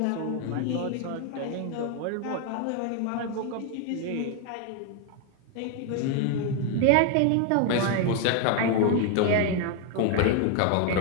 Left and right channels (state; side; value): different; both; correlation 0.00